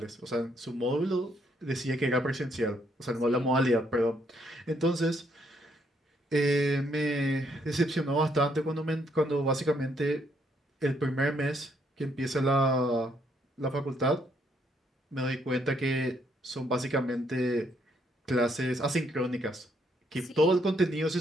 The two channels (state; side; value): normal; both; correlation 0.72